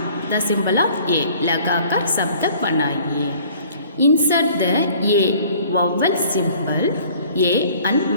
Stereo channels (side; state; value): both; inverted; correlation -0.53